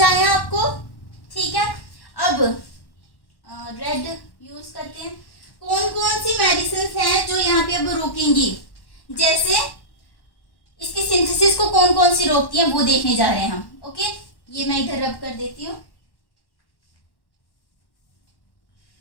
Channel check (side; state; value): right; late; 1.1 ms